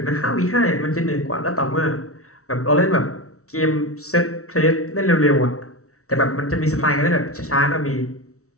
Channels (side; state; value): right; late; 0.64 ms